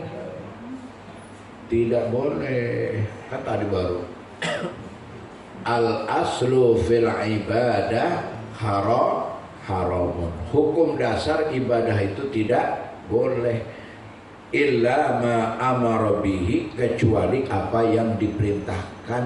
Tidak boleh. Kan tadi baru. Al aslu fil ibadah haramun. Hukum dasar ibadah itu tidak boleh. Illa ma amara bihi, kecuali apa yang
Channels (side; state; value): both; identical; correlation 1.00